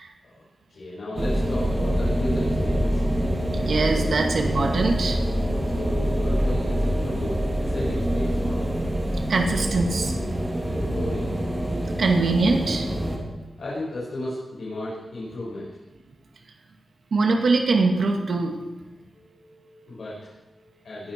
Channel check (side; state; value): both; normal; correlation 0.93